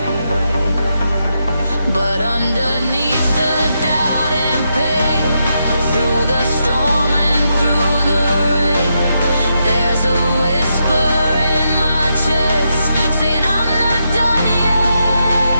But underneath the doubt and pain, through the storm and through the rain, there's a whisper in my chest saying I'm not done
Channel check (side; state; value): both; inverted; correlation -0.83